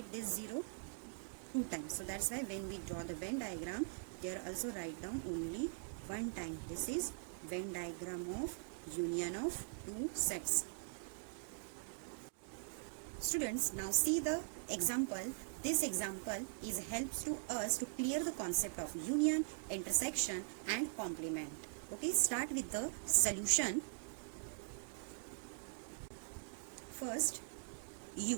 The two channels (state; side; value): silent; left; digital silence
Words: this 0 two times. So that's why when we draw the Venn diagram, there also write down only one time. This is Venn diagram of union of two sets. Students, now see the example. This example helps to us to clear the concept of union, intersection and complement. Okay, start with the solution. First,